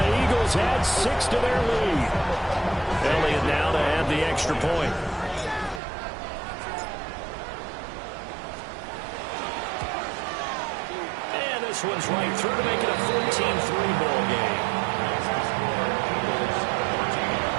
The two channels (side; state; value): left; drops out; at 5.8 s